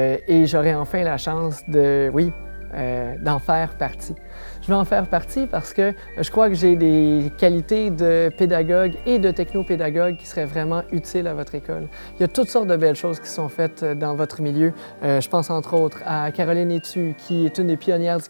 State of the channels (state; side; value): inverted; both; correlation -1.00